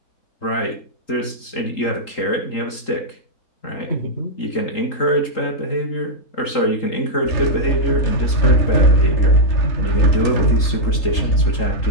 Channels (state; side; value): late; right; 3.8 ms